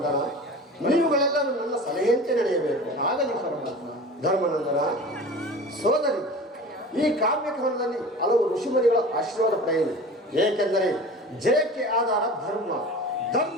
ನೀವುಗಳೆಲ್ಲರೂ ನನ್ನ ಸಲಹೆಯಂತೆ ನಡೆಯಬೇಕು. ಆಗಲಿ ಪರಮಾತ್ಮ. ಧರ್ಮನಂದನ, ಸೋದರಿ, ಈ ಕಾವ್ಯಕವನದಲ್ಲಿ ಹಲವು ಋಷಿಮುನಿಗಳ ಆಶೀರ್ವಾದ ಪಡೆಯಿರಿ. ಏಕೆಂದರೆ ಜಯಕ್ಕೆ ಆಧಾರ ಧರ್ಮ,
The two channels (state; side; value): normal; both; correlation 0.37